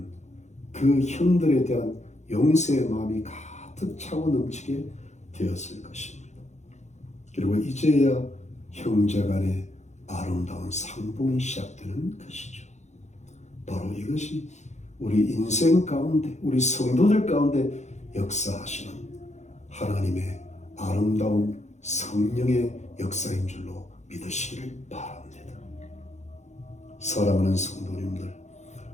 그 형들에 대한 용서의 마음이 가득 차고 넘치게 되었을 것입니다. 그리고 이제야 형제간의 아름다운 상봉이 시작되는 것이죠. 바로 이것이 우리 인생 가운데, 우리 성도들 가운데 역사하시는 하나님의 아름다운 성령의 역사인 줄로 믿으시기를 바랍니다. 사랑하는 성도님들,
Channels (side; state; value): right; late; 0.33 ms